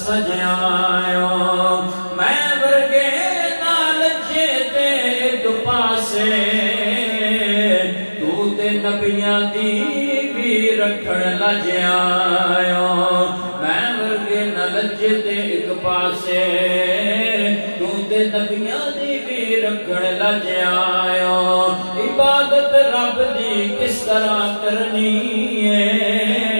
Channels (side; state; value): both; inverted; correlation -1.00